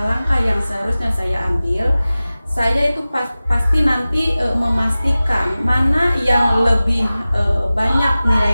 yang seharusnya saya ambil, saya itu pasti nanti memastikan mana yang lebih banyak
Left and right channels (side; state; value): both; inverted; correlation -0.97